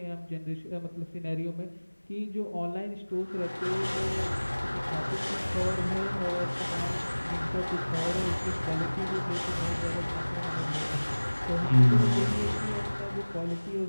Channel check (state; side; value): inverted; both; correlation -1.00